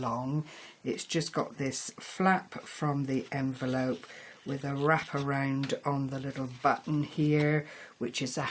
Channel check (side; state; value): both; identical; correlation 1.00